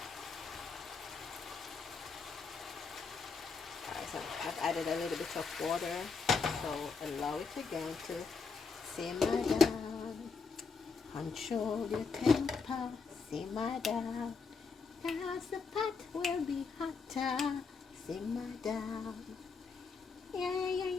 Alright, so I've added a little bit of water. So allow it again to simmer down. Control your temper, simmer down. Cause the pot will be hotter. Simmer down. Yeah.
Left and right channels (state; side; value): quieter; right; 4.9 dB